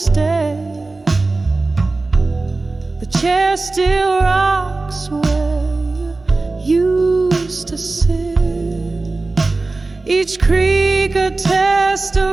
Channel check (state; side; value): quieter; left; 3.4 dB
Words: The chair still rocks where you used to sit, each creak a